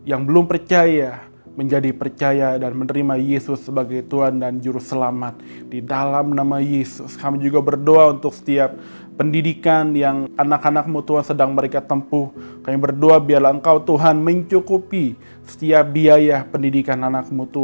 yang belum percaya menjadi percaya dan menerima Yesus sebagai Tuhan dan Juru Selamat. Di dalam nama Yesus, kami juga berdoa untuk setiap pendidikan yang anak-anak-Mu Tuhan sedang mereka tempuh. Kami berdoa biarlah Engkau Tuhan mencukupi setiap biaya pendidikan anak-Mu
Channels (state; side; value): inverted; both; correlation -1.00